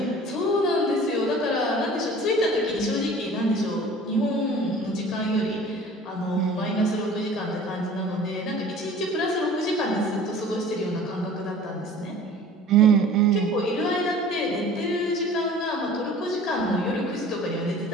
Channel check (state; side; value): normal; both; correlation 0.45